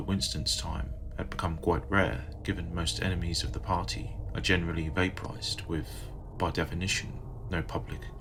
time had become quite rare, given most enemies of the party are generally vaporized with, by definition, no public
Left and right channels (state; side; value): identical; both; correlation 1.00